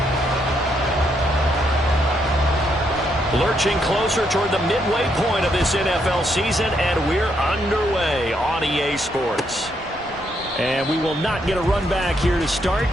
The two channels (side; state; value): both; normal; correlation 0.76